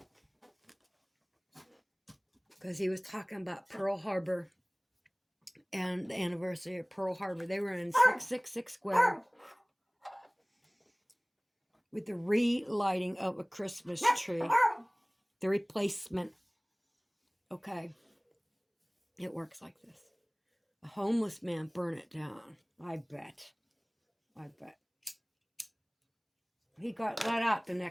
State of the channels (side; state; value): both; identical; correlation 1.00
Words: Because he was talking about Pearl Harbor and the anniversary of Pearl Harbor. They were in 666 Square with the relighting of a Christmas tree. The replacement. Okay. It works like this. A homeless man burned it down. I bet. He got let out the